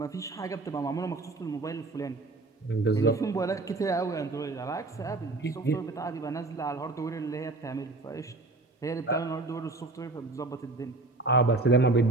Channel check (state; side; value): quieter; left; 3.2 dB